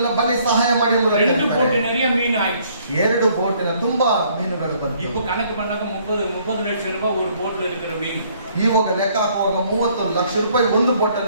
ಬನ್ನಿ ಸಹಾಯ ಮಾಡಿ. 2 போட் நிறைய மீன் ஆயிடுச்சு. 2 ಬೋಟಿನ ತುಂಬಾ ಮೀನುಗಳು ಬಂತು. இப்போ கணக்கு பண்ணாக்க 30 ಲಕ್ಷ ರೂಪಾಯಿ ஒரு போட்ல இருக்கிற மீன். ಇವಾಗ ಲೆಕ್ಕ ಹಾಕುವಾಗ 30 ಲಕ್ಷ ರೂಪಾಯಿ ಒಂದು ಬೋಟ್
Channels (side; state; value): both; inverted; correlation -0.63